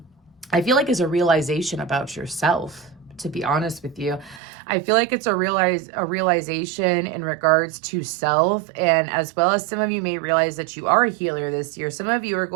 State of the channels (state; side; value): drops out; left; at 4.4 s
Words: I feel like is a realization about yourself, to be honest with you. I feel like it's a realization in regards to self, and as well as some of you may realize that you are a healer this year. Some of you are